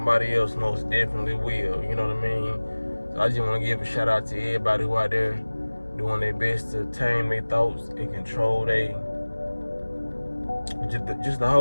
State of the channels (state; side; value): inverted; both; correlation -1.00